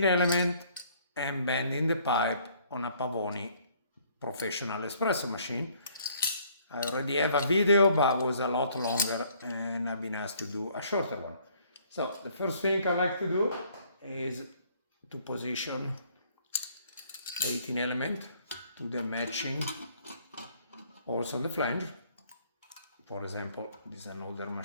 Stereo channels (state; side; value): inverted; both; correlation -0.62